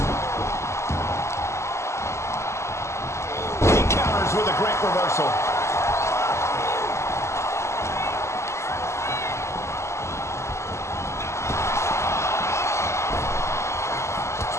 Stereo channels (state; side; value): late; right; 0.13 ms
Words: He counters with a great reversal.